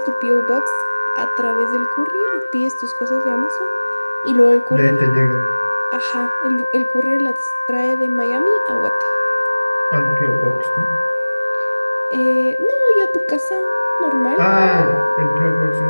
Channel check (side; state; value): both; inverted; correlation -1.00